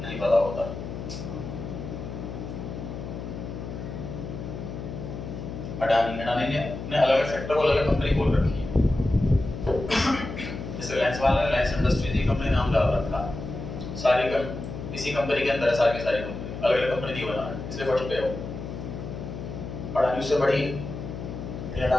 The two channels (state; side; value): noise; left; hum, 8 dB below the sound